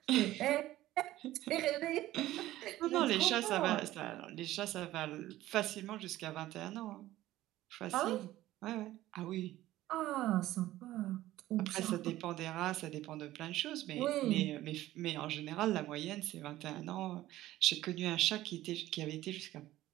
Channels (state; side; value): quieter; left; 15.3 dB